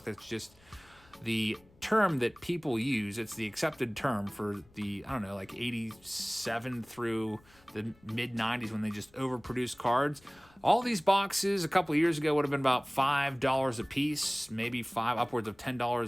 That's just the term that people use. It's the accepted term for the, I don't know, like 87 through the mid-90s when they just overproduced cards. All these boxes a couple of years ago would have been about $5 a piece, maybe upwards of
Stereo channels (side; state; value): left; noise; rumble, 29 dB below the sound